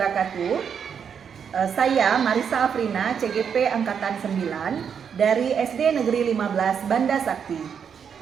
Saya Marisa Afrina, CGP Angkatan 9 dari SD Negeri 15 Banda Sakti,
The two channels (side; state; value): left; quieter; 7.3 dB